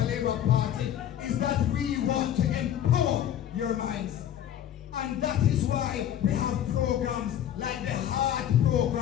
Labour Party is that we want to empower your minds. And that is why we have programs like the Heart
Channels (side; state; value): right; quieter; 10.6 dB